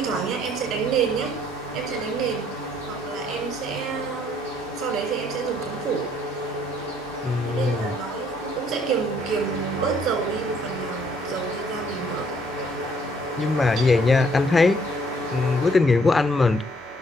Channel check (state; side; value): normal; both; correlation 0.64